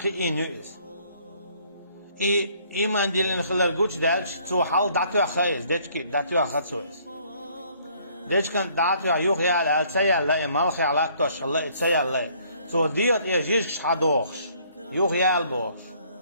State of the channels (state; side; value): inverted; both; correlation -0.62